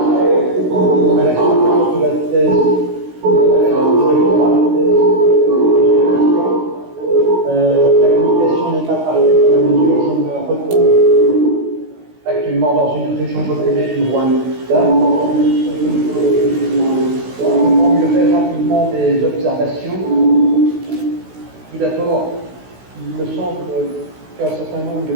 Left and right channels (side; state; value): left; late; 16 ms